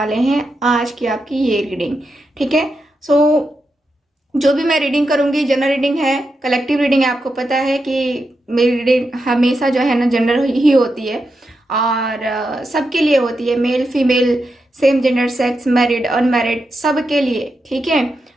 हैं आज की आपकी ये रीडिंग। ठीक है। सो जो भी मैं रीडिंग करूंगी जनरल रीडिंग है, कलेक्टिव रीडिंग है। आपको पता है कि मेरी रीडिंग हमेशा जो है ना जनरल ही होती है और सबके लिए होती है, male female, same gender, sex, married unmarried, सबके लिए। ठीक है।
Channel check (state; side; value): normal; both; correlation 0.86